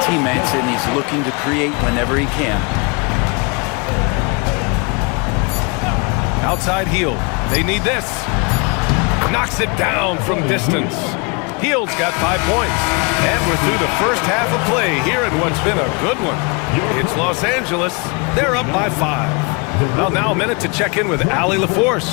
teammates, and he's looking to create whenever he can. Outside Hield. They need this. Knocks it down from distance. Hield's got 5 points. And we're through the first half of play here in what's been a good one. It's Los Angeles. They're up by 5. Well, now a minute to check in with Allie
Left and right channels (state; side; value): quieter; right; 31.2 dB